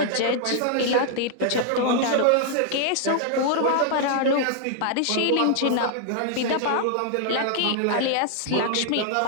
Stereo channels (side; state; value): both; different; correlation 0.00